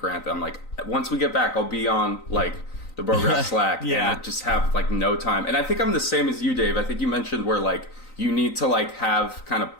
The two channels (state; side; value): late; right; 3.9 ms